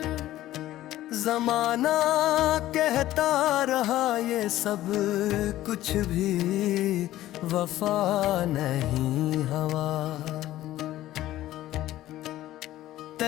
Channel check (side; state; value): right; quieter; 14.6 dB